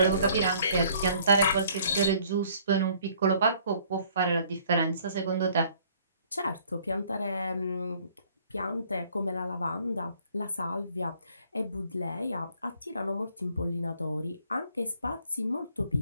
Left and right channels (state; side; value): inverted; both; correlation -0.59